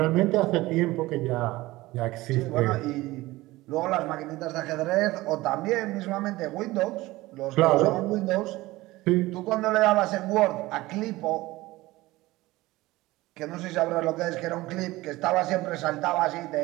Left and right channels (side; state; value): left; quieter; 19.0 dB